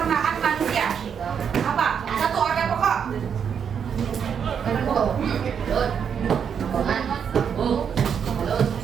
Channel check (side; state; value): left; quieter; 7.4 dB